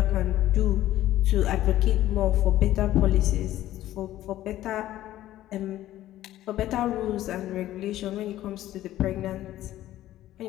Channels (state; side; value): quieter; right; 14.0 dB